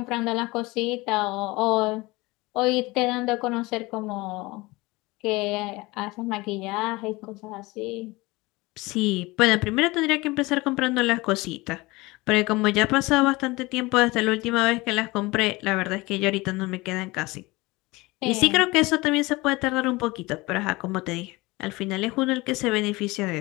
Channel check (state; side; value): quieter; right; 22.3 dB